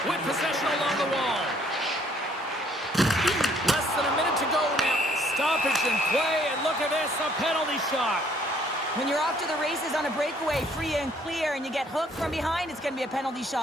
With possession along the wall. Less than a minute to go now. Stoppage in play, and look at this, a penalty shot. When you're off to the races on a breakaway, free and clear, and you get hooked from behind, it's going to be a penalty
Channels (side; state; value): both; normal; correlation 0.63